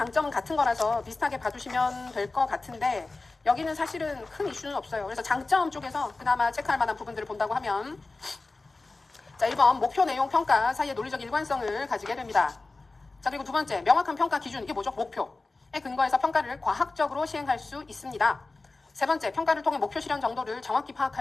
같은 거라서 비슷하게 봐주시면 될 것 같은데 여기는 사실은 큰 이슈는 없어요. 그래서 장점 쪽에서 그나마 체크할 만한 부분들을 본다고 하면 자, 1번 목표 내용 평가 사이의 논리적 일관성을 가지게 됩니다. 자, 그리고 두 번째 명확한 평가 기준, 이게 뭐죠? 목표에 근거해서 평가를 과학적으로 시행할 수 있습니다. 세 번째, 평가를 통해 목표 실현 정도를 정확히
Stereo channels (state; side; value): quieter; right; 3.5 dB